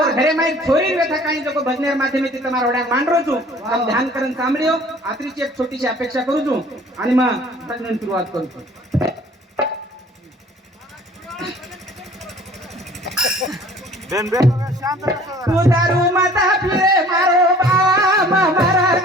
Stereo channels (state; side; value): normal; both; correlation 0.51